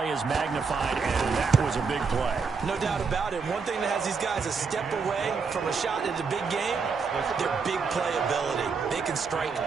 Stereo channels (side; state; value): left; quieter; 5.2 dB